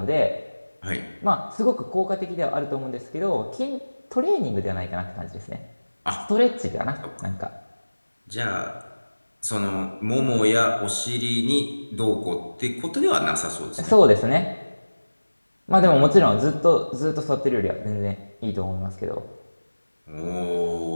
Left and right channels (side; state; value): both; inverted; correlation -1.00